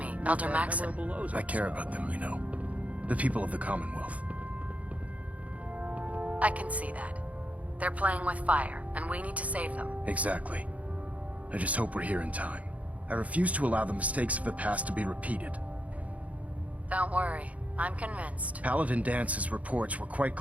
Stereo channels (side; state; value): left; late; 0.068 ms